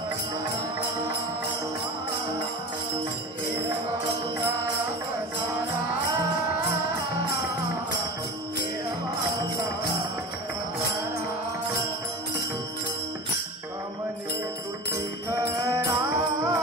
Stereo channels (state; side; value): normal; both; correlation 0.31